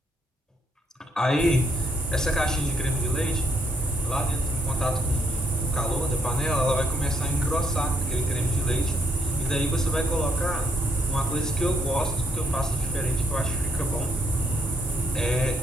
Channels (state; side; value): normal; both; correlation 0.73